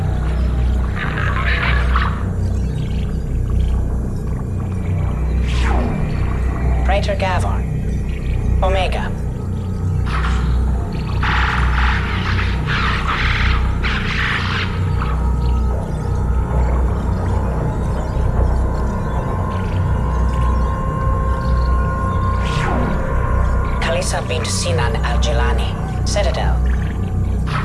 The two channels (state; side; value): identical; both; correlation 1.00